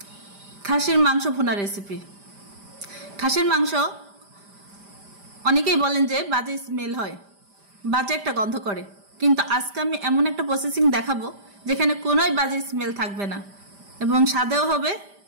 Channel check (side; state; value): left; late; 5.0 ms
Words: খাসির মাংস ভুনা রেসিপি। খাসির মাংস অনেকেই বলেন যে বাজে স্মেল হয়, বাজে একটা গন্ধ করে, কিন্তু আজকে আমি এমন একটা প্রসেসিং দেখাবো যেখানে কোনোই বাজে স্মেল থাকবে না এবং স্বাদেও হবে